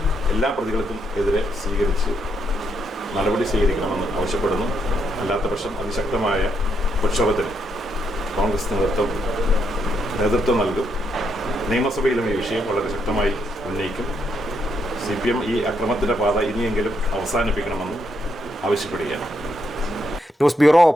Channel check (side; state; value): both; normal; correlation 0.77